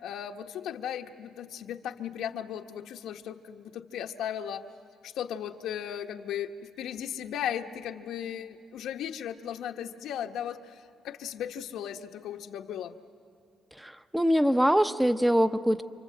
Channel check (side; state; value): both; normal; correlation 0.88